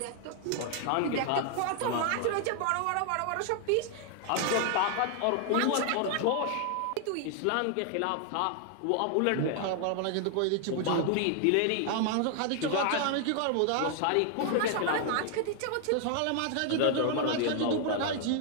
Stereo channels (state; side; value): different; both; correlation 0.00